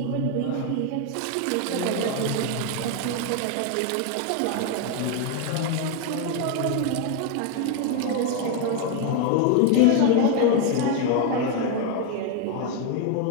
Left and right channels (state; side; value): different; both; correlation 0.01